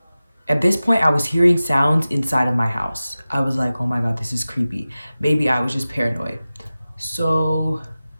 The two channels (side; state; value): both; inverted; correlation -0.96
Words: at this point, I was hearing sounds inside of my house. I was like, oh my God, this is creepy. Maybe I was just paranoid. So